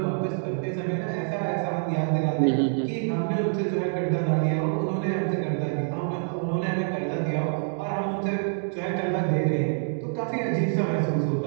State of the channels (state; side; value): silent; left; digital silence